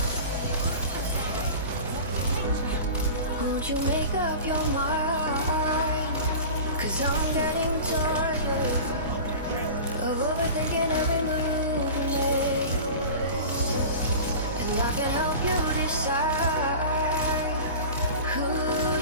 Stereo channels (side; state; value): both; inverted; correlation -0.35